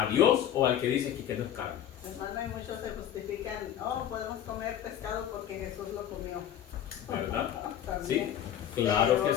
Dios o al que dice que no es carne? Hermano, y muchos se justifican, podemos comer pescado porque Jesús lo comió. ¿Verdad? También. Sí, claro Pero que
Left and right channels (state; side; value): quieter; right; 10.5 dB